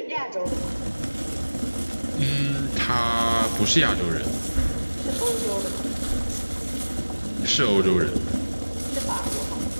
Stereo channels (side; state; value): both; inverted; correlation -1.00